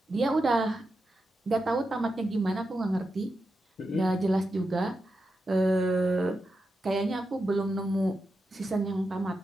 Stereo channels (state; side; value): normal; both; correlation 0.88